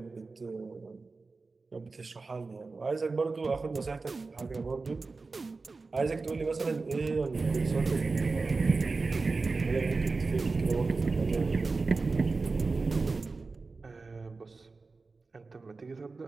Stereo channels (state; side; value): quieter; left; 4.0 dB